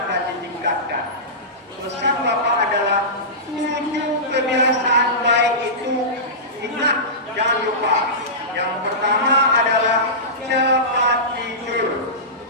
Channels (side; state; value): both; normal; correlation -0.19